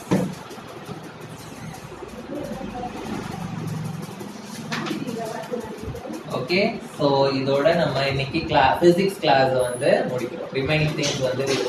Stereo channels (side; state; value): both; identical; correlation 1.00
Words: Okay, so இதோட நம்ம இன்னைக்கு பிசிக்ஸ் கிளாஸ் வந்து முடிக்கிறோம். ரிமைனிங் திங்ஸ் வந்து we